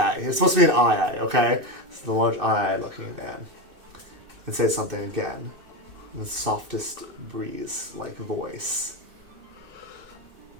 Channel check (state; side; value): late; left; 2.6 ms